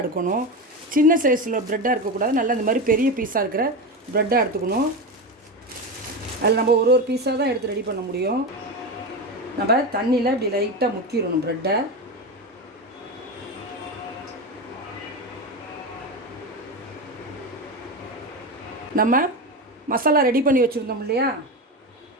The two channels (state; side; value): normal; both; correlation 0.19